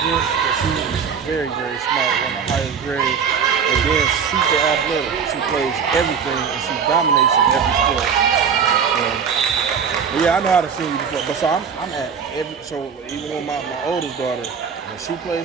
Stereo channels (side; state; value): left; quieter; 6.7 dB